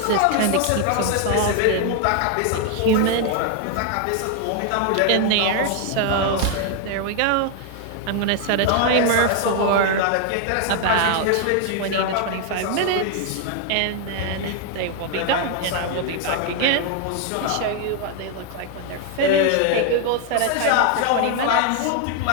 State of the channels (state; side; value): different; both; correlation 0.00